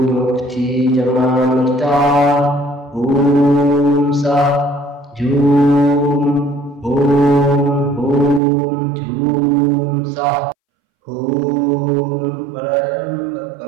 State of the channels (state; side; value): drops out; left; at 8.4 s